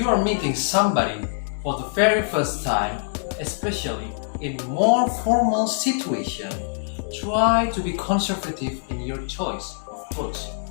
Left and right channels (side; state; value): right; silent; 62 dB below the other